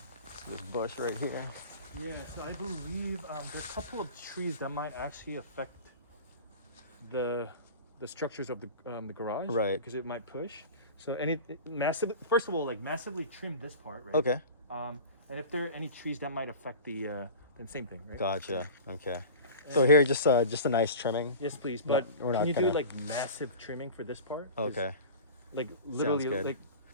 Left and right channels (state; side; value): inverted; both; correlation -0.36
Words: This bush right here. Yeah, so I believe there's a couple of trees that might actually affect the structures of the garage, right? Because it might push. So first of all, like massively trim this part, right? Okay. And if there are any trees that might affect then same thing, right? Gotcha. Okay. So here, just a nice trimming. Yes, please. But we're not can you gonna do like massive trimming for this part? Okay. Like literally, Sounds good. like